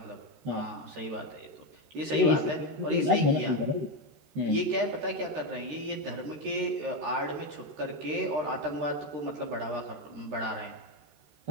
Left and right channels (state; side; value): late; left; 13 ms